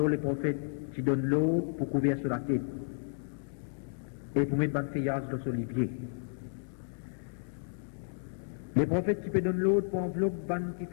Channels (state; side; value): silent; right; 56 dB below the other